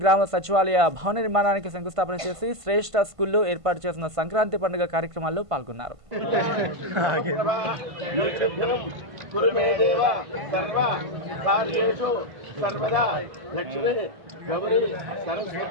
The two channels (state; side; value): late; left; 1.5 ms